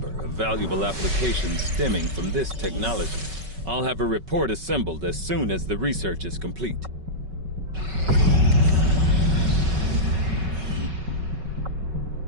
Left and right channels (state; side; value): late; left; 5.3 ms